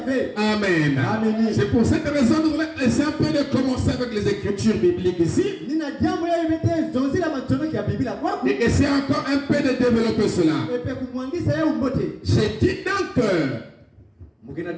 Amen. C'est pour cette raison que nous voulons essayer un peu de commencer avec les Écritures bibliques ici. Et essayer encore un peu de développer cela. J'ai dit donc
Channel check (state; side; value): identical; both; correlation 1.00